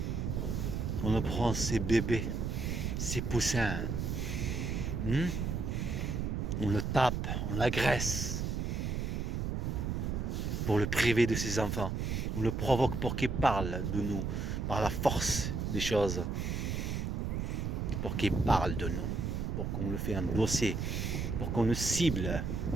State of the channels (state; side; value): noise; right; rumble, 1 dB below the sound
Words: On le prend ses bébés, ses poussins. On le tape, on l'agresse. Pour le priver de ses enfants. On le provoque pour qu'il parle de nous, par la force des choses. Pour qu'il parle de nous, pour qu'on le fait endosser, pour qu'on le cible.